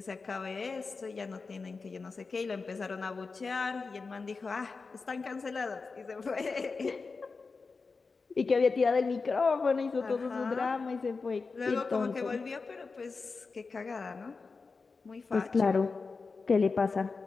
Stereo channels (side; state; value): right; quieter; 4.4 dB